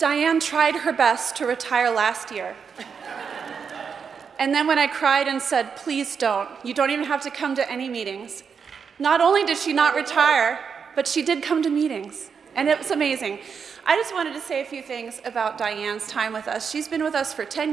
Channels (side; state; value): left; quieter; 6.3 dB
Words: tried her best to retire last year. And then when I cried and said, please don't, you don't even have to come to any meetings. Not only did she not retire, but she did come to meetings, and it was amazing. I just wanted to say a few things about Diane's time with us. She's been with us for 10